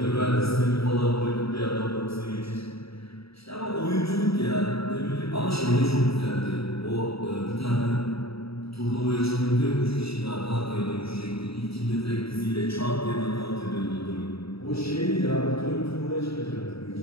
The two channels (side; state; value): right; late; 0.77 ms